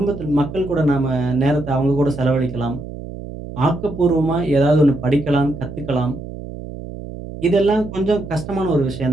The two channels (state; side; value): noise; right; hum, 11 dB below the sound